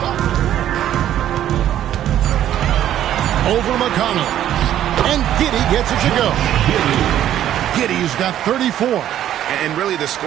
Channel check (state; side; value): quieter; left; 11.6 dB